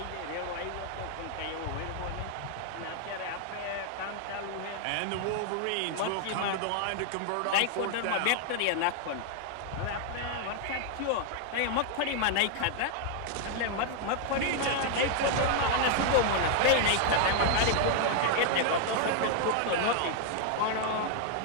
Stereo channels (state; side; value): different; both; correlation 0.00